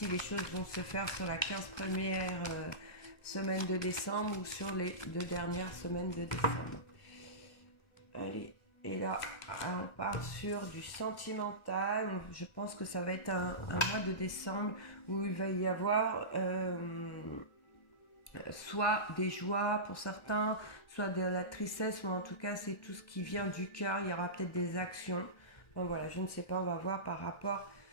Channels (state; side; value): late; right; 1.4 ms